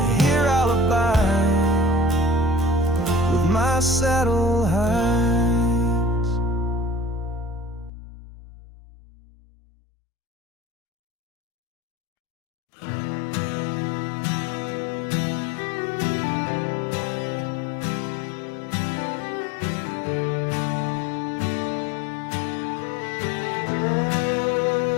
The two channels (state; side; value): drops out; right; at 7.9 s